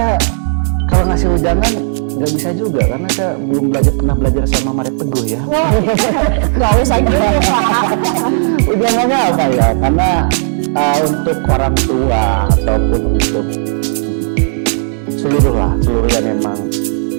kalau ngasih ujangan nggak bisa juga karena saya belum pernah belajar sama Maret Teguh ya. Nggak usah gitu Pak. Ujangannya apa ya? Karena untuk orang tua ataupun untuk seluruh yang memang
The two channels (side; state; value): left; silent; digital silence